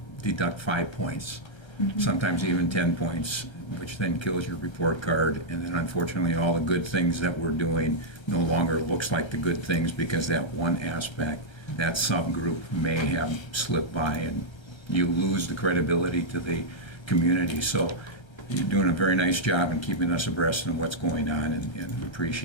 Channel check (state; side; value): late; right; 1.3 ms